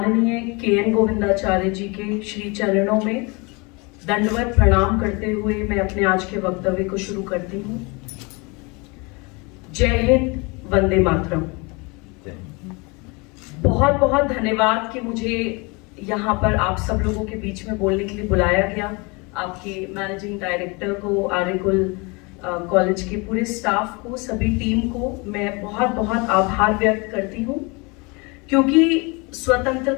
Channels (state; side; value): quieter; right; 28.4 dB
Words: के.एन. गोविंदाचार्य जी के श्री चरणों में दंडवत प्रणाम करते हुए मैं अपने आज के वक्तव्य को शुरू करती हूँ। जय हिंद, वंदे मातरम। बहुत बहुत धन्यवाद कि मुझे यहाँ पर आप सब लोगों के बीच में बोलने के लिए बुलाया गया। आपके मैनेजिंग डायरेक्टर को, आर्यकुल कॉलेज के पूरे स्टाफ को, सभी टीम को मैं बहुत बहुत आभार व्यक्त करती हूँ, क्योंकि